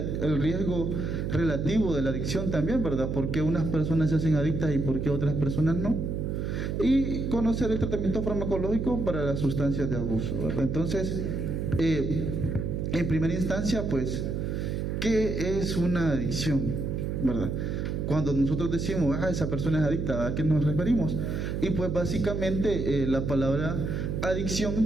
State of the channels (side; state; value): right; noise; hum, 2 dB below the sound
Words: relativo de la adicción también, ¿verdad?, por qué unas personas se hacen adictas y por qué otras personas no, y conocer el tratamiento farmacológico para las sustancias de abuso, ¿verdad? Entonces, en primera instancia, pues, ¿qué es una adicción?, ¿verdad? Cuando nosotros decimos, esa persona es adicta, ¿a qué nos referimos? Y pues básicamente la palabra